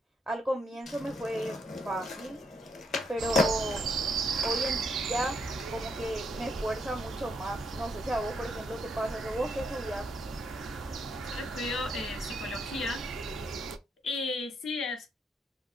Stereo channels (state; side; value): normal; both; correlation 0.75